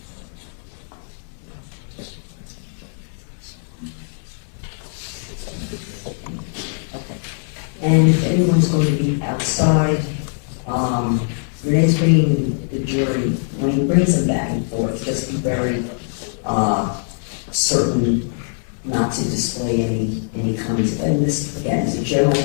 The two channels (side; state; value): right; silent; 65 dB below the other